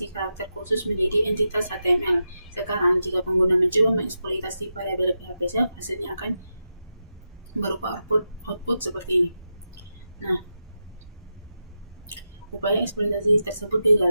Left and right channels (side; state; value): both; inverted; correlation -0.89